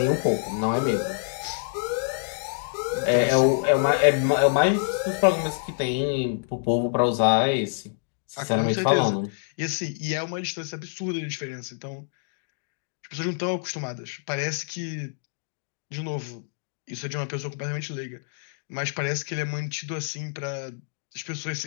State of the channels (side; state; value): right; silent; digital silence